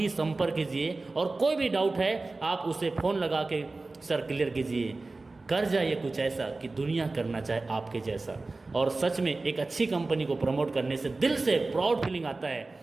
संपर्क कीजिए, और कोई भी डाउट है आप उसे फ़ोन लगा के सर क्लियर कीजिए। कर जाइए कुछ ऐसा कि दुनिया करना चाहे आपके जैसा। और सच में एक अच्छी कंपनी को प्रमोट करने से दिल से प्राउड फीलिंग आता है,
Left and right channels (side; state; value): left; quieter; 3.4 dB